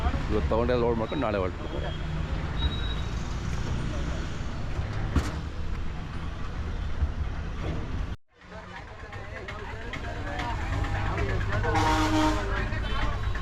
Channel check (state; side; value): identical; both; correlation 1.00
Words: ಇವತ್ತು ತೊಗೊಂಡೆಲ್ಲ ಲೋಡ್ ಮಾಡ್ಕೊಂಡು ನಾಳೆ ಹೊರಟಿರ್ತಾರೆ.